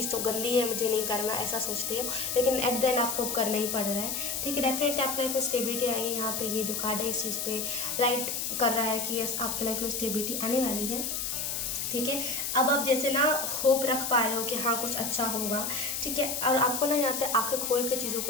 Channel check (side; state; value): left; noise; hiss, 2 dB below the sound